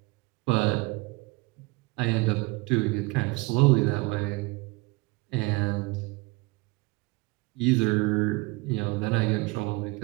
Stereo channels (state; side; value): quieter; left; 24.6 dB